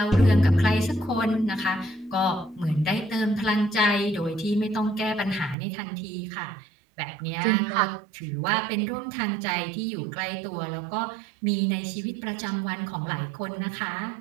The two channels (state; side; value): drops out; left; at 5.6 s